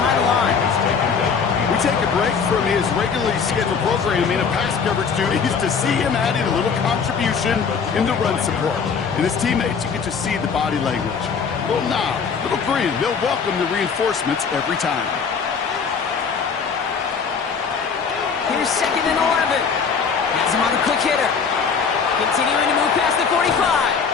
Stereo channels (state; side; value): quieter; right; 5.9 dB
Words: the line. We take a break from his regularly scheduled programming of pass coverage duties to see him adding a little contribution in the run support. And his teammates, you get to see the body language. Little nod, little grin. They'll welcome the reinforcements every time. Here's 2nd and 11. Has him on the quick hitter. Continuing to move past the 45.